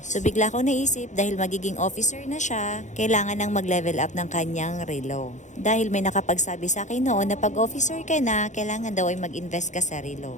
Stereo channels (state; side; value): late; right; 0.35 ms